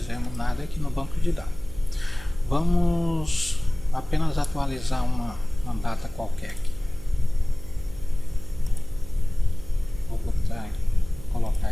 nada aqui no banco de dados. Vamos apenas atualizar uma data qualquer aqui. Vou colocar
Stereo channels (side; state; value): right; noise; hum, 18 dB below the sound